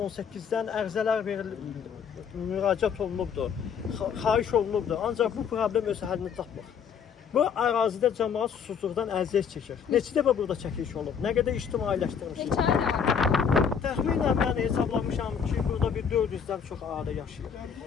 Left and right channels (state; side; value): quieter; right; 7.1 dB